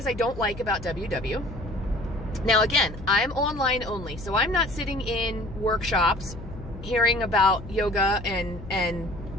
I don't like about WW. Now again, I'm online only, so I'm not sitting in workshops hearing about yoga and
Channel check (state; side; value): noise; left; hum, 13 dB below the sound